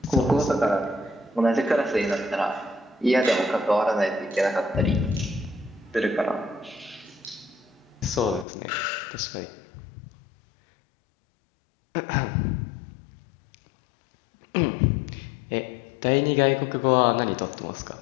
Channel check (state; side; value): drops out; right; at 8.5 s